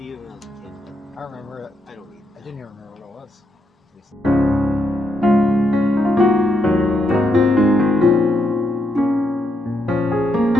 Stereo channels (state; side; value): normal; both; correlation 0.80